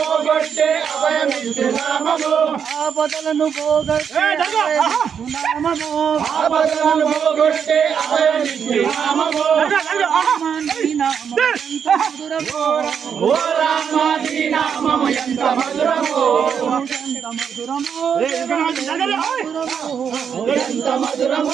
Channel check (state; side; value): quieter; left; 7.4 dB